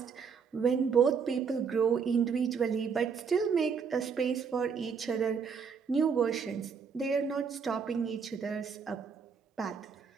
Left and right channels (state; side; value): quieter; left; 6.1 dB